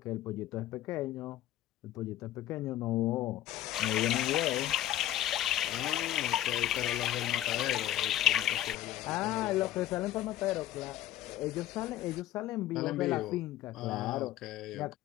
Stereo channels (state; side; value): quieter; right; 13.7 dB